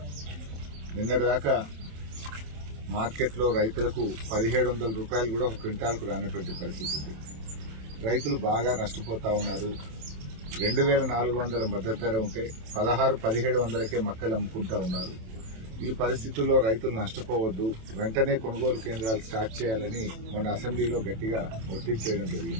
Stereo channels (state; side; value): late; left; 27 ms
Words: నిన్నటిదాకా మార్కెట్లో రైతులకు 1700 రూపాయలు కూడా ఒక క్వింటాల్కు రానటువంటి పరిస్థితి ఉంది. రైతులు బాగా నష్టపోతా ఉన్నారు. 2400 మద్దతు ధర ఉంటే 1600-1700కే మొక్కలు అమ్ముకుంటా ఉన్నారు. ఈ పరిస్థితుల్లో రైతులు నష్టపోవద్దు, వెంటనే కొనుగోలు కేంద్రాలు స్టార్ట్ చేయాలని మొన్న అసెంబ్లీలో గట్టిగా ఒత్తిడి చేయడం